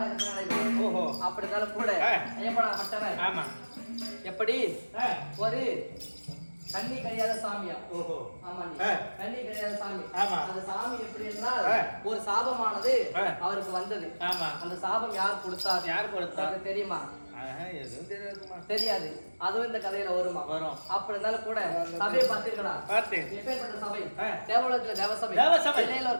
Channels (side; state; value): both; inverted; correlation -1.00